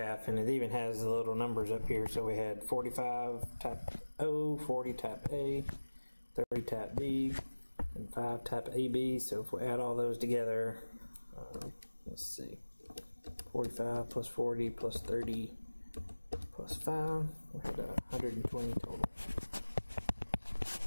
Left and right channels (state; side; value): inverted; both; correlation -1.00